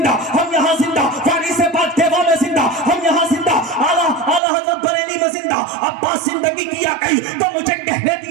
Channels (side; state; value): left; drops out; at 4.4 s